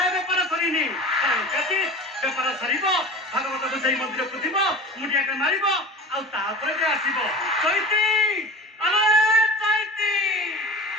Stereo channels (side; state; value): both; normal; correlation 0.35